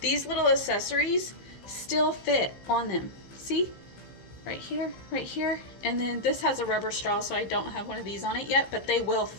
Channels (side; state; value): right; late; 15 ms